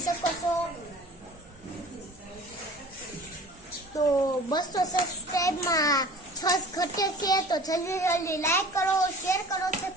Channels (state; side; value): normal; both; correlation 0.44